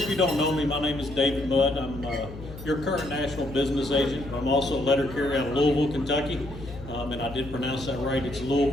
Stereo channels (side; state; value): left; noise; hum, 13 dB below the sound